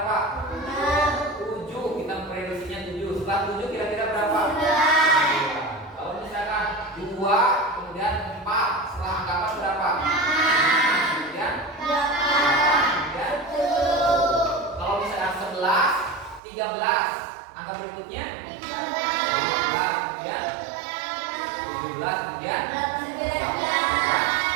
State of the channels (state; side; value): drops out; left; at 16.4 s